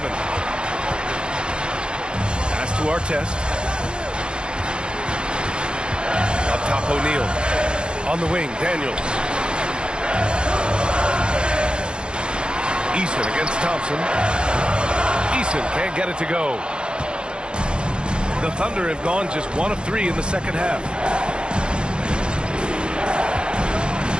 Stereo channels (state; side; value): late; left; 0.052 ms